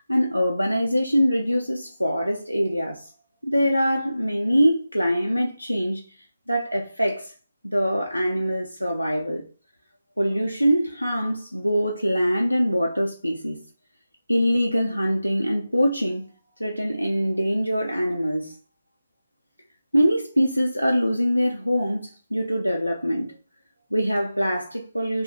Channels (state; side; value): inverted; both; correlation -0.94